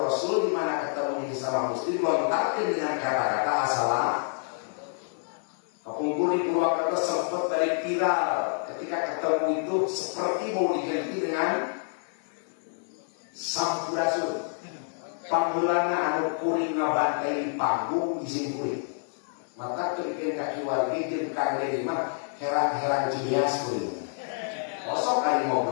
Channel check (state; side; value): silent; right; 56 dB below the other